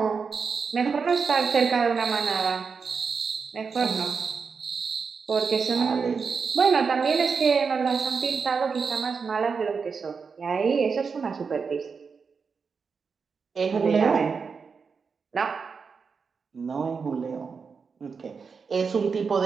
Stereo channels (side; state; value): left; quieter; 5.4 dB